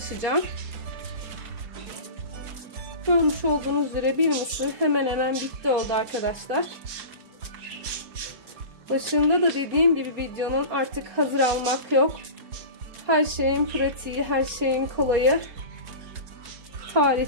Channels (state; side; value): late; left; 4.3 ms